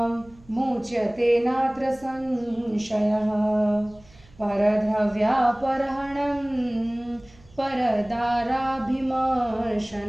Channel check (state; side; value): noise; right; hum, 26 dB below the sound